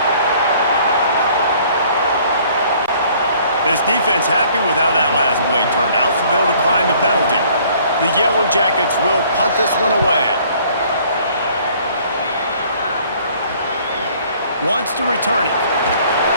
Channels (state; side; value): inverted; both; correlation -0.57